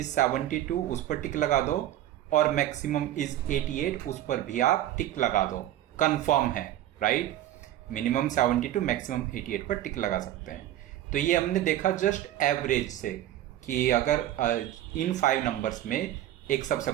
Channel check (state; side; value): quieter; left; 13.1 dB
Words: 72, उस पर टिक लगा दो, और मैक्सिमम इज 88, उस पर भी आप टिक लगा दो, कंफर्म है, राइट। मिनिमम 72, मैक्सिमम 88 पर टिक लगा सकते हैं। तो ये हमने देखा जस्ट एवरेज से कि अगर इन 5 नंबर्स में एक सबसे